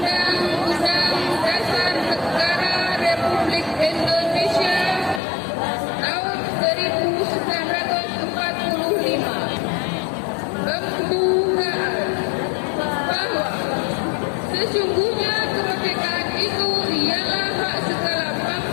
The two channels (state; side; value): drops out; right; at 5.2 s